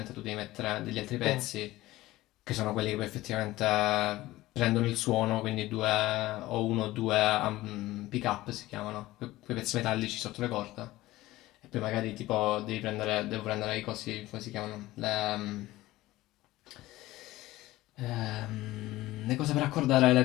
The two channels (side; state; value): right; quieter; 17.4 dB